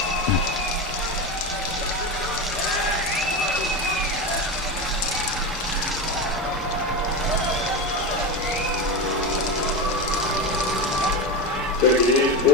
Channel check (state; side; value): normal; both; correlation 0.19